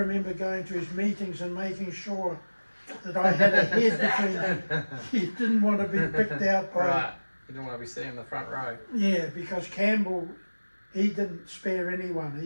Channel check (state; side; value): inverted; both; correlation -1.00